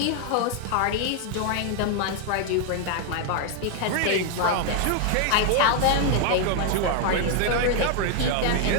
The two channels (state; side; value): different; both; correlation 0.00